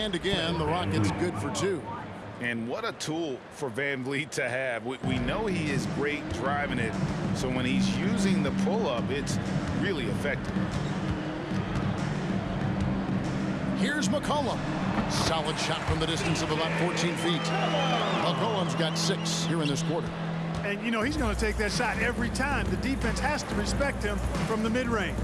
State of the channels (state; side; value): identical; both; correlation 1.00